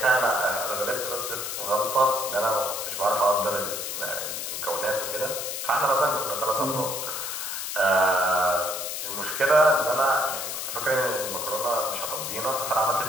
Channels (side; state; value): left; noise; hiss, 4 dB below the sound